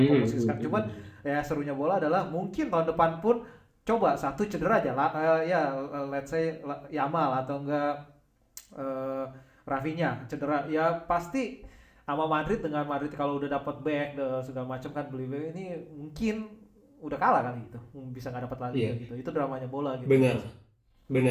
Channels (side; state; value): both; identical; correlation 1.00